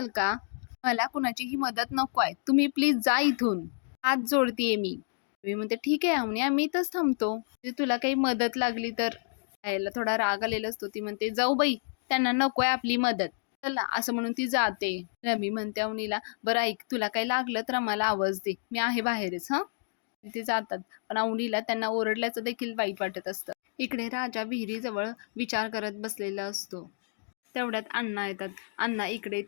का, मला कुणाचीही मदत नको आहे, तुम्ही प्लीज जा इथून, हात जोडतीये मी म्हणते ठीक आहे अवनी आम्ही इथंच थांबतो, तुला काही मदत लागली तर. यायला थोडा राग आलेला असतो. ती म्हणते जाऊ बाई त्यांना नकोय आपली मदत, चला असं म्हणून ती जाते. रमी म्हणते अवनीला बरं ऐक तुला काही लागलं तर आम्हाला आवाज दे, मी आहे बाहेरच हा. तिथे जातात. पण अवनीला त्यांना ओरडल्याचं देखील वाईट वाटत असतं. इकडे राजा विहिरीजवळ विचार करत बसलेला असतो. तेवढ्यात अण्णा येतात. अण्णा इकडे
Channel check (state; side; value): silent; right; digital silence